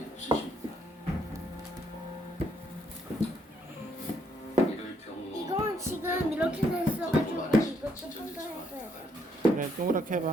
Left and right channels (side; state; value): both; normal; correlation 0.72